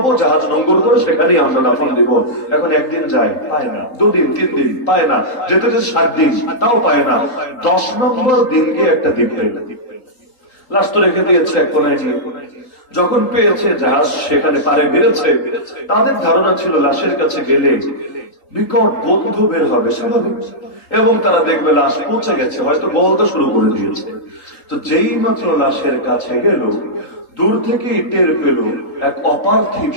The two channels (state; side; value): late; right; 3.8 ms